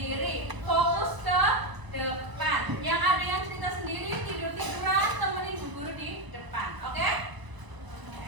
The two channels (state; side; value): late; left; 1.0 ms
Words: Fokus ke depan. Yang ada yang cerita sendiri, tidur-tiduran, temenin Bu Guru di depan. Oke?